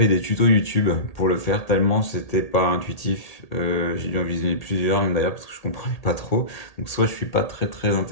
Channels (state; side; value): late; right; 1.8 ms